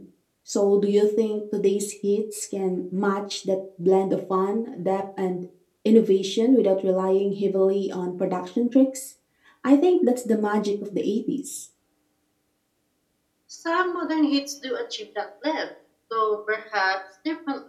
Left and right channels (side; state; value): both; identical; correlation 1.00